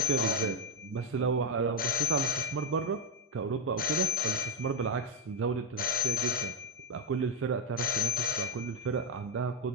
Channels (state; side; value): normal; both; correlation 0.07